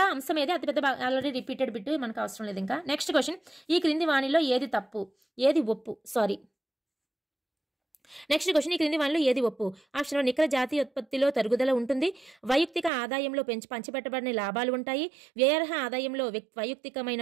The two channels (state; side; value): drops out; left; at 12.9 s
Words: అంశం ఏది, అతిపెద్ద ఆల్రెడీ రిపీటెడ్ బిట్, మనకు అవసరం లేదు ఇంకా. నెక్స్ట్ క్వశ్చన్, ఈ క్రింది వాణిలో ఏది తప్పు ఏది ఒప్పు? నెక్స్ట్ క్వశ్చన్, ఈ క్రింది వానిలో ఏది ఒప్పు? ఆప్షన్ నికర జాతీయ ఉత్పత్తిలో తరుగుదల ఉంటుంది, వైయక్తిక ఆదాయంలో పంచిపెట్టబడిన లాభాలు ఉంటాయి, వ్యయార్హ ఆదాయంలో వైయక్తికమైన